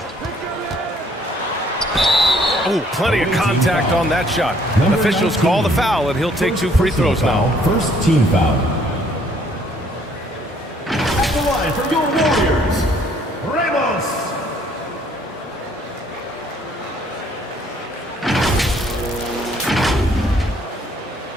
Ooh, plenty of contact on that shot. Officials call the foul, and he'll take 2 free throws now. First team foul. At the line for your Warriors, Ramos.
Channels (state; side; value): normal; both; correlation 0.63